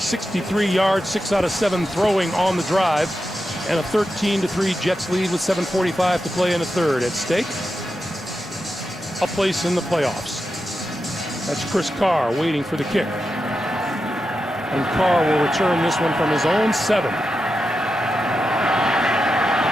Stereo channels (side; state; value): both; normal; correlation 0.89